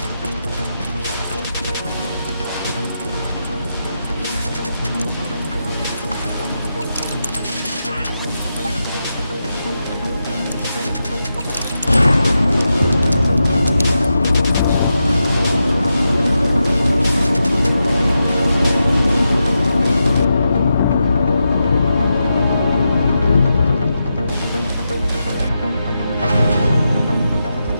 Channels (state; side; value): inverted; both; correlation -0.87